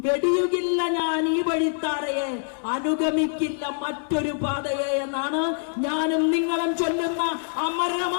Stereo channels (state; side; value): silent; right; 62 dB below the other